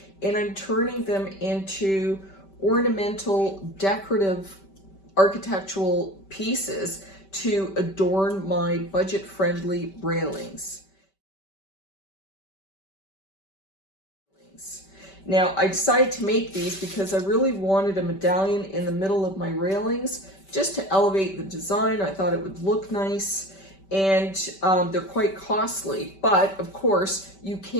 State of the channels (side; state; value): right; late; 5.2 ms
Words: and I'm turning them into ornamental, decorative, architectural pieces to adorn my budget-friendly railings. Now, I decided to make these because I really wanted a medallion in the middle of my railings just to elevate the design. I thought it would look nice, and they're quite costly. But of course, you